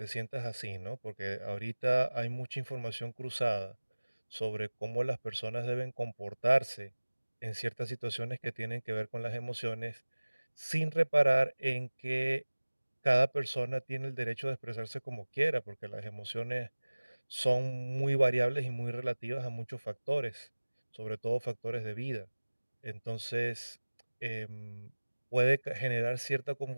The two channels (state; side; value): inverted; both; correlation -1.00